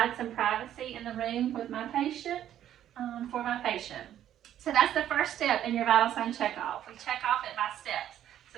some privacy in the room with my patient. For my patient. So that's the first step in your vital sign checkoff. We check off it by steps.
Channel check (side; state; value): left; quieter; 11.2 dB